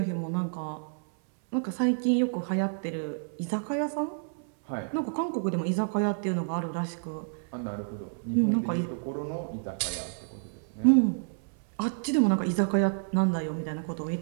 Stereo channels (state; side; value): silent; left; 58 dB below the other